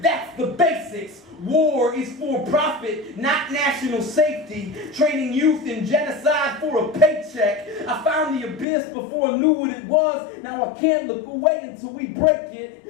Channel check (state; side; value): drops out; right; at 8.7 s